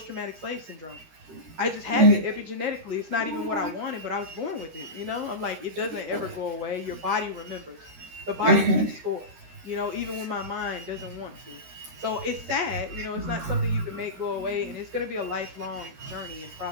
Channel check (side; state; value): left; late; 13 ms